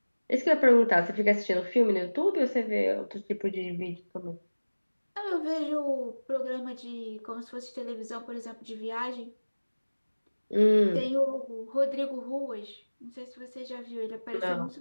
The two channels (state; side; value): inverted; both; correlation -1.00